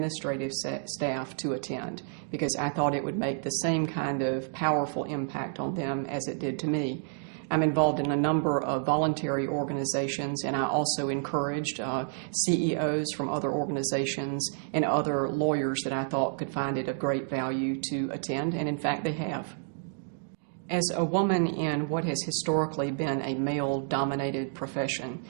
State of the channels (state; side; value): silent; left; digital silence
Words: staff to attend, because I thought it would make the same kind of powerful impact on them as it did to me. I'm involved in a number of voluntary organizations, and I also encouraged CEOs from other organizations and other lawyers that I thought could find it of great value to attend, and in fact they have. As a woman in what has historically been a male-dominated profession,